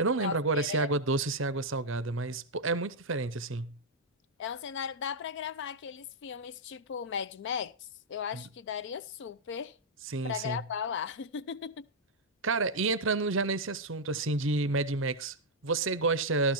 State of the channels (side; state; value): both; normal; correlation -0.04